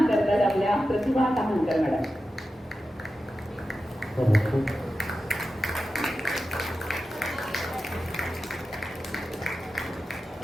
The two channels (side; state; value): both; normal; correlation 0.92